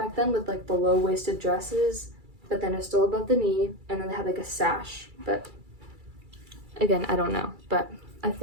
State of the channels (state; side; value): late; left; 2.3 ms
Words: then, with like the low-waisted dresses, but then it's still above the knee, and then they have like a sash. But again, I don't know, but I